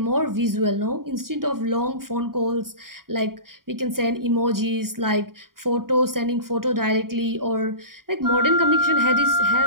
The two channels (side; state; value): left; late; 0.92 ms